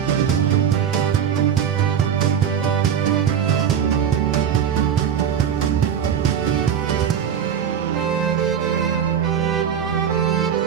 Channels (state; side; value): quieter; left; 8.4 dB